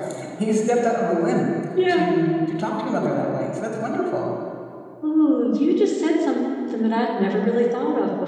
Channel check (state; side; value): identical; both; correlation 1.00